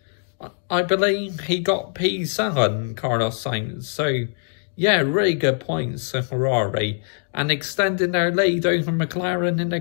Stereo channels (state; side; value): silent; right; digital silence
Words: I believe he got P7, Carlos Sainz. So, yeah, really good points for Ferrari, and extending their lead over McLaren in the